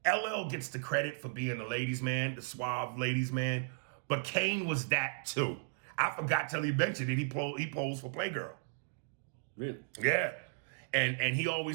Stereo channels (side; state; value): left; silent; digital silence